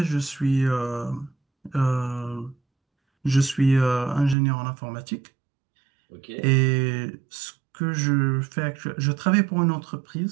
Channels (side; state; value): left; drops out; at 4.4 s